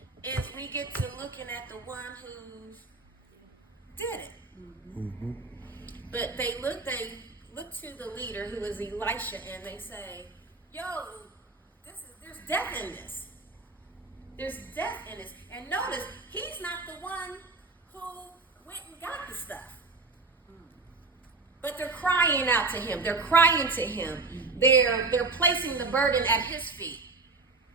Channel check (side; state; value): left; quieter; 3.8 dB